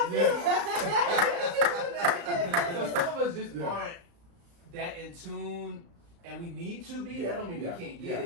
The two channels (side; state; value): left; late; 35 ms